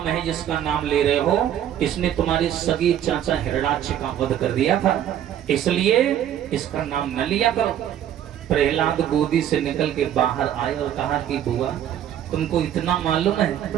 है जिसका नाम ले रहे हो, इसने तुम्हारे सगे चाचा हिरण्याक्ष का वध कर दिया था, इसलिए इसका नाम न लिया करो। प्रहलाद गोदी से निकल के बाहर आए और कहा कि बुआ तुमको इतना मालूम है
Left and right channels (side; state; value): left; quieter; 10.6 dB